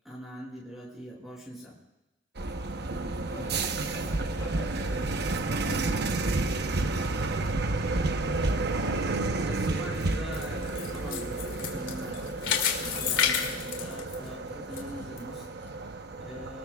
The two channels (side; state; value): both; normal; correlation 0.42